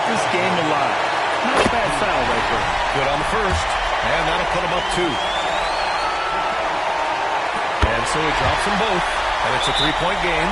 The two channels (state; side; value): identical; both; correlation 1.00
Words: this game alive. Not a bad foul right there. Good on the first. And that'll put him up 2. And so he drops them both. And it's a 3-point game.